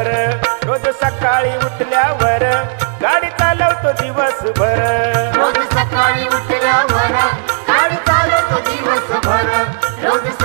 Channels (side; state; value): left; silent; digital silence